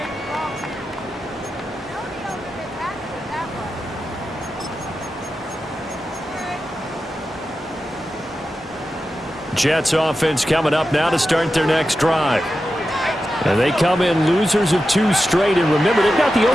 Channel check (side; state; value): both; normal; correlation 0.91